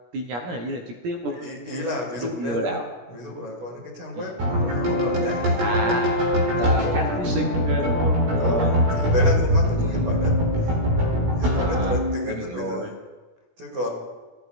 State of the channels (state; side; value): late; left; 17 ms